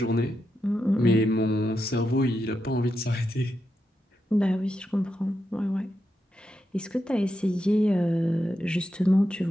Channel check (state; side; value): normal; both; correlation 0.86